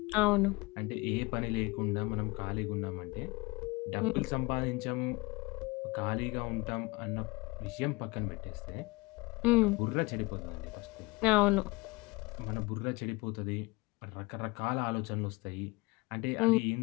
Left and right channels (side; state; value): right; quieter; 24.3 dB